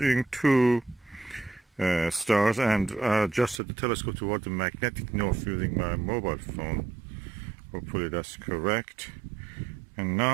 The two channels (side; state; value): left; drops out; at 3.6 s